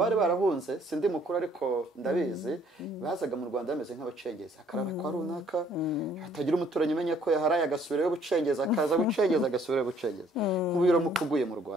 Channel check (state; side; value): normal; both; correlation 0.62